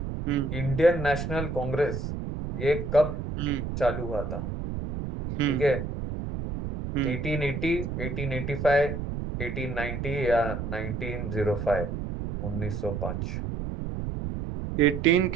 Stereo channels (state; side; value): noise; right; rumble, 5 dB below the sound